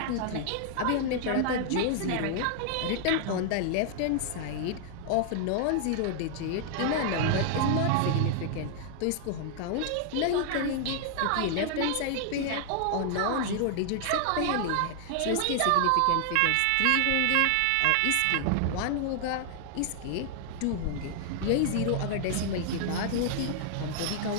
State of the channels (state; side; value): different; both; correlation 0.00